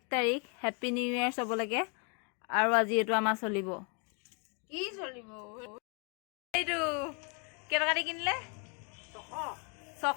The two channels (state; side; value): quieter; right; 36.5 dB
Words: তাৰিখ হেপী নিউ ইয়েৰ চবলৈকে আৰু আজি এইটো আমাৰ চলিব কি চলিব এইটো কেটকা দি কিনিলে